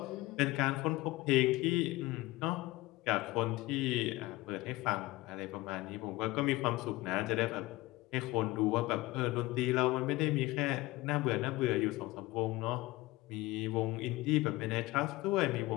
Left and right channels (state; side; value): quieter; right; 19.7 dB